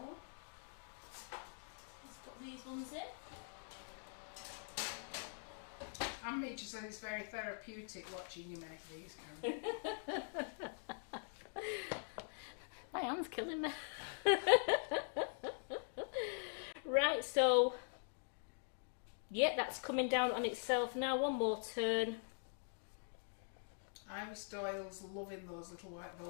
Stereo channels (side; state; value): right; silent; digital silence